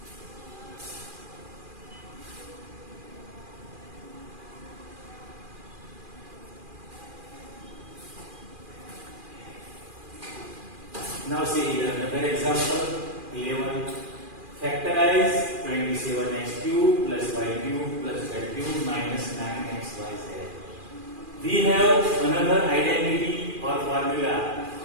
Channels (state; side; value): late; left; 2.4 ms